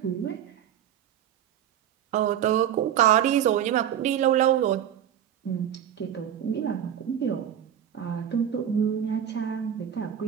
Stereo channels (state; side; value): quieter; left; 10.1 dB